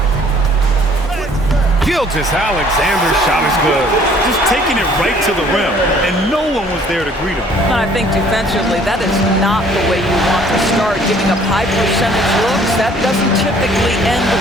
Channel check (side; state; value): both; normal; correlation 0.57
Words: Gilgeous-Alexander's shot is good. Just taking it right to the rim, and no one was there to greet him. And I think defensively, that is not the way you want to start. Giving up high percentage looks, that doesn't typically end